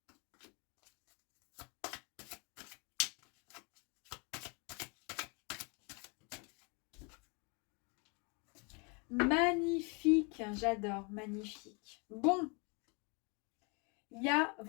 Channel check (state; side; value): quieter; right; 32.8 dB